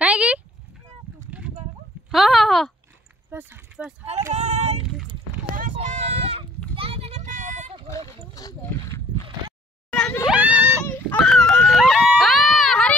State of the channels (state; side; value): normal; both; correlation 0.58